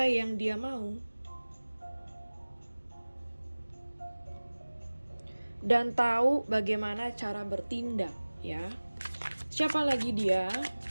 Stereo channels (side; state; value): both; inverted; correlation -1.00